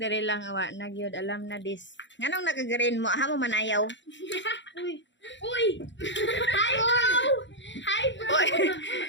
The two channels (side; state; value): right; late; 0.53 ms